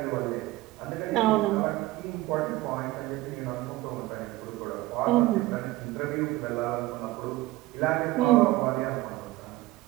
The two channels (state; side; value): quieter; left; 18.2 dB